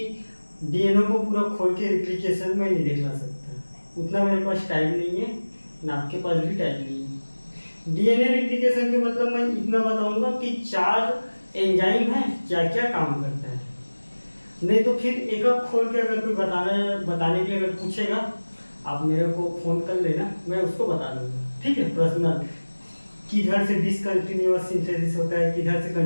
डीएनए को पूरा खोल के रेप्लिकेशन में नहीं दिखला सकता, उतना मेरे पास टाइम नहीं है, ना आपके पास भी टाइम नहीं है। डीएनए रेप्लिकेशन के मतलब मैं इतना बताऊंगा कि 4 एंजाइम है, क्या क्या काम करता है। नहीं तो फिर एक एक खोल के अगर कोई बताने के लिए अगर पूछेगा, आप मेरे को फोन कर लेना, मैं उसको बता दूंगा, ठीक है। पर्सनल किधर से डिसकंटिन्यूअस सिंथेसिस होता है, किधर से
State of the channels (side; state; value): both; inverted; correlation -1.00